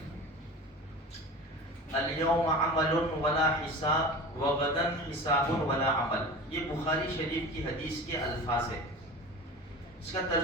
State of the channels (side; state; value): both; normal; correlation 0.34